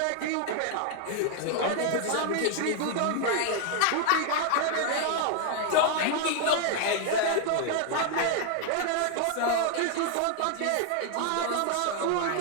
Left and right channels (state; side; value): different; both; correlation 0.00